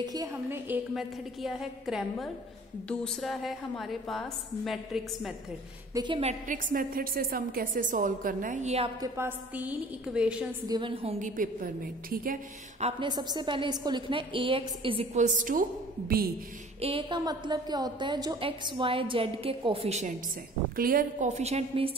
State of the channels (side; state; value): both; normal; correlation 0.49